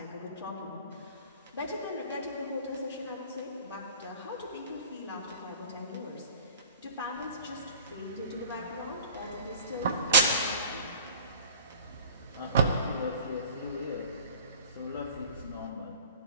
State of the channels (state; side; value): inverted; both; correlation -0.44